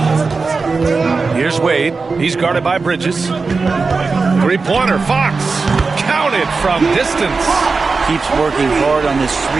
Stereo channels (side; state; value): left; quieter; 4.3 dB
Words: Here's Wade. He's guarded by Bridges. Three-pointer. Fox. Counted from distance. Keeps working hard on this